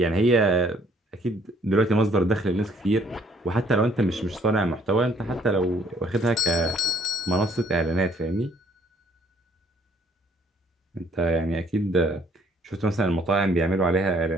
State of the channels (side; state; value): both; normal; correlation 0.63